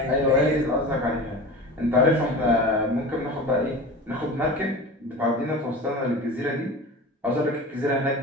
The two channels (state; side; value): normal; both; correlation 0.33